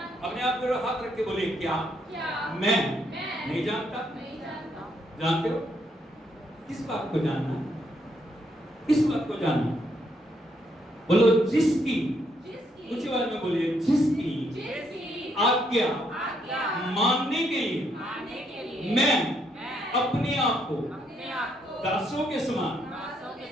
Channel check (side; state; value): both; normal; correlation 0.74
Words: अपने आप पर हाथ रख के बोले, क्या मैं नहीं जानता? जानते हो? किस बात को जानना? किस बात को जानना? बोलो जिसकी, ऊंची आवाज में बोलिए, जिसकी आज्ञा मानने के लिए मैं अपने आप को दासों के